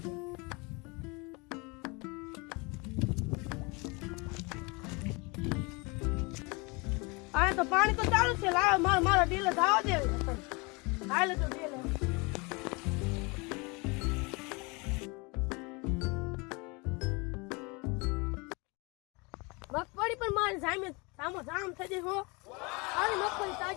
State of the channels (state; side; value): quieter; right; 28.0 dB